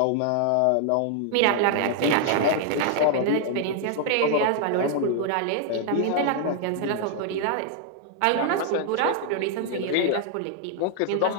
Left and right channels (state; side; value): different; both; correlation 0.00